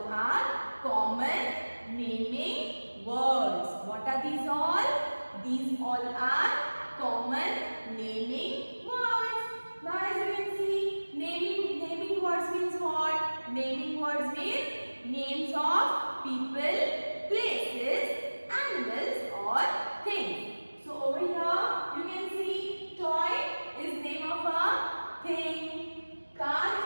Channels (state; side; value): inverted; both; correlation -1.00